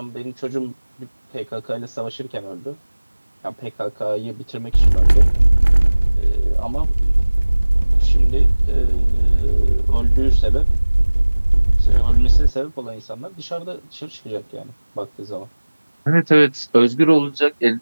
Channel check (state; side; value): inverted; both; correlation -1.00